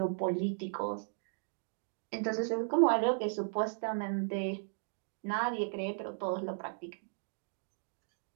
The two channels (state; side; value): silent; left; digital silence